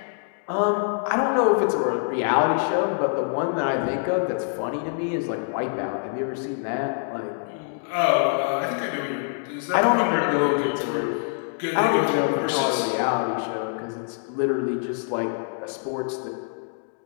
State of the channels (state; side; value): silent; right; digital silence